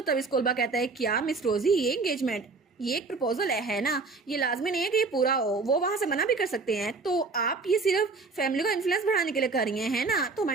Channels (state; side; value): quieter; left; 4.1 dB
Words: तब स्कूलबा कहता है क्या मिस रोजी ये एंगेजमेंट ये एक प्रपोजल है ना, ये लाजमी नहीं है कि ये पूरा हो। वो वहां से मना भी कर सकते हैं। तो आप ये सिर्फ फैमिली को इन्फ्लुएंस बढ़ाने के लिए कर रही हैं है ना। तो